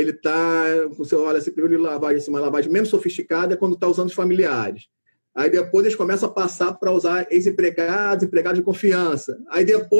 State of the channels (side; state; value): both; inverted; correlation -1.00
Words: está, você olha, esse primeiro nível de lavagem, uma lavagem menos sofisticada é quando está usando os familiares. Aí depois eles começam a passar para usar ex-empregados, empregados de confiança. Aí